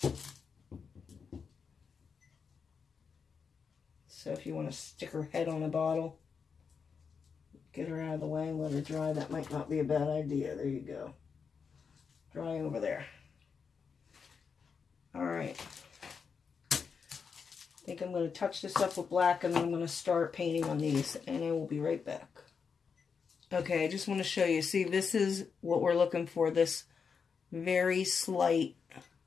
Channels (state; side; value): quieter; right; 5.9 dB